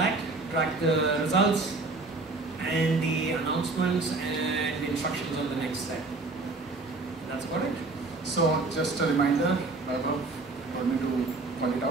track the results and the announcements and the instructions on the next step. That's about it. So just a reminder, Vaibhav told me to call it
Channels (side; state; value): left; quieter; 3.5 dB